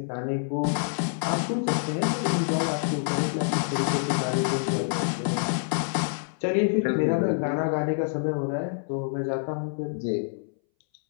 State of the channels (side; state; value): right; silent; 60 dB below the other